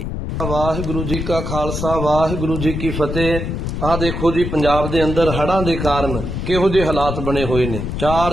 ਵਾਹਿਗੁਰੂ ਜੀ ਕਾ ਖਾਲਸਾ, ਵਾਹਿਗੁਰੂ ਜੀ ਕੀ ਫਤਿਹ। ਆਹ ਦੇਖੋ ਜੀ, ਪੰਜਾਬ ਦੇ ਅੰਦਰ ਹੜ੍ਹਾਂ ਦੇ ਕਾਰਨ ਕਿਹੋ ਜਿਹੇ ਹਾਲਾਤ ਬਣੇ ਹੋਏ ਨੇ।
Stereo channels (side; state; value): left; noise; rumble, 4 dB below the sound